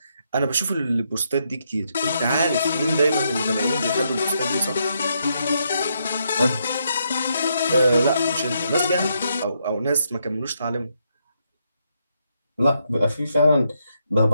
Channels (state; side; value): inverted; both; correlation -0.78